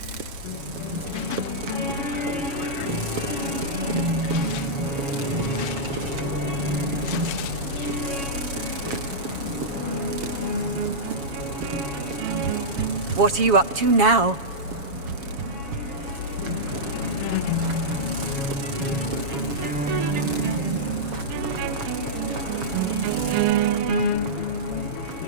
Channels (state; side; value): late; left; 7.2 ms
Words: What are you up to now?